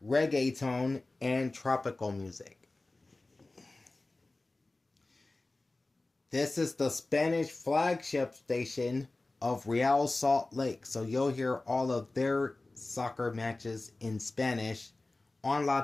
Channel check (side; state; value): right; quieter; 3.1 dB